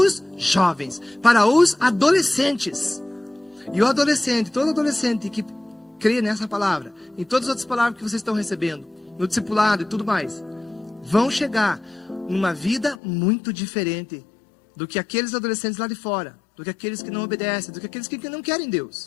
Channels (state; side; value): drops out; right; at 13.0 s